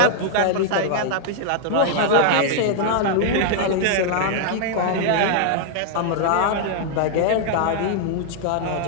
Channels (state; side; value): different; both; correlation 0.00